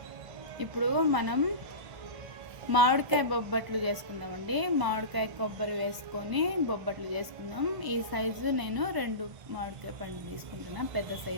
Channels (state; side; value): late; left; 1.0 ms